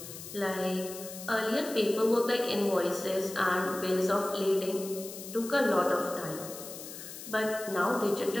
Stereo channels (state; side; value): noise; left; hiss, 12 dB below the sound